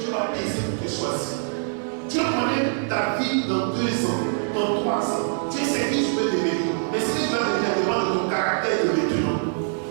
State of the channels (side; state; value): left; silent; digital silence